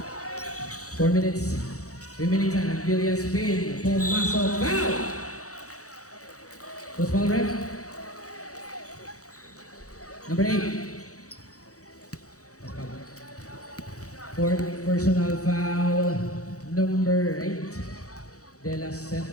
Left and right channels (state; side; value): late; right; 0.66 ms